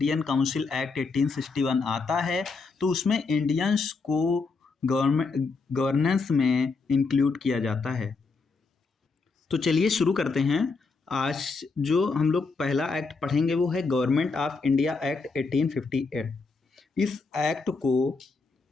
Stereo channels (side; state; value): right; quieter; 4.3 dB